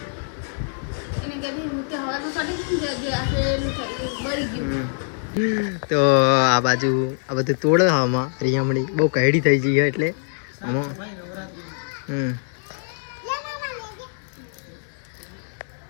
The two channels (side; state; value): right; silent; digital silence